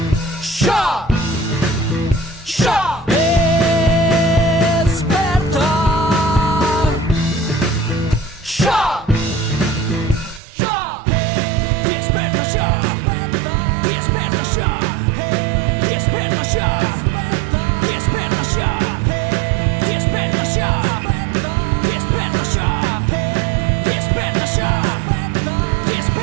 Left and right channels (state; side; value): drops out; left; at 10.4 s